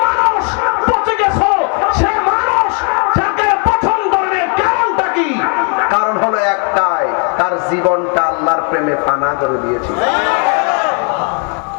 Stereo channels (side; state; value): right; quieter; 37.2 dB